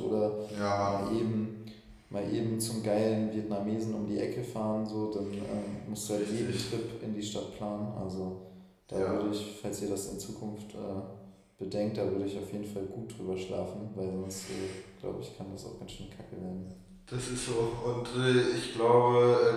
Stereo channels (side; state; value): both; identical; correlation 1.00